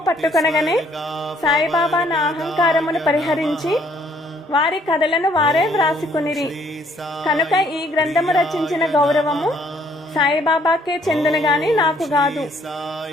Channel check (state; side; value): normal; both; correlation 0.64